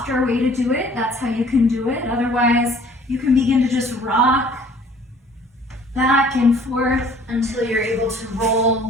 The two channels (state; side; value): normal; both; correlation 0.54